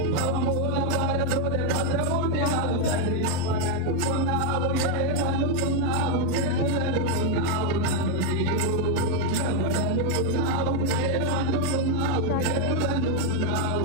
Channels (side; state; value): both; different; correlation 0.01